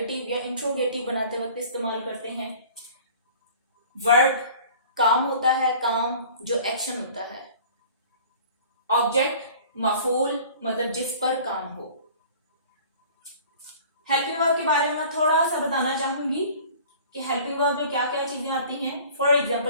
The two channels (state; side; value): inverted; both; correlation -0.46